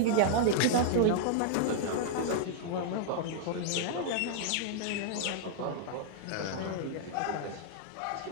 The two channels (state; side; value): different; both; correlation -0.01